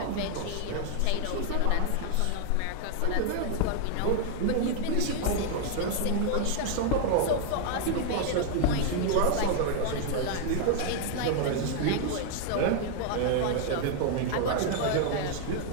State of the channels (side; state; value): both; different; correlation 0.00